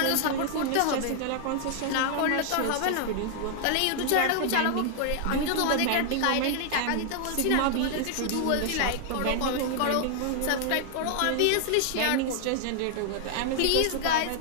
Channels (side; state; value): both; different; correlation 0.00